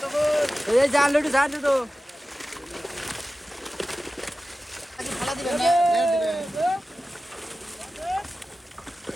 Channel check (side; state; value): both; normal; correlation 0.94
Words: এই জাল লুটি জাল তো